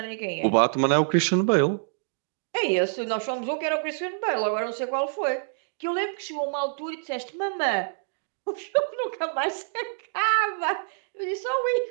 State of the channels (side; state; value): left; silent; digital silence